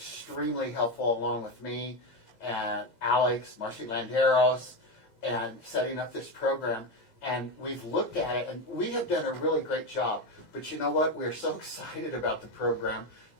helpful along with me and Alex, Marcy Landeros, and setting up this program. And we've looked at it, and we have done a really great job. But you know what? We're so excited about the program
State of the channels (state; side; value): late; right; 6.9 ms